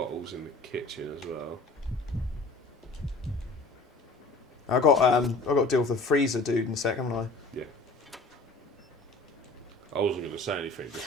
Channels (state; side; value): quieter; right; 3.1 dB